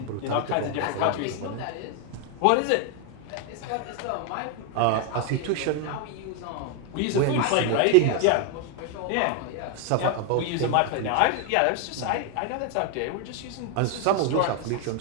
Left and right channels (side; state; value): both; different; correlation 0.01